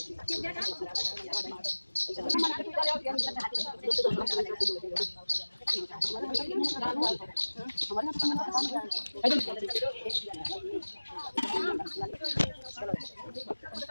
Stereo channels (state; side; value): inverted; both; correlation -1.00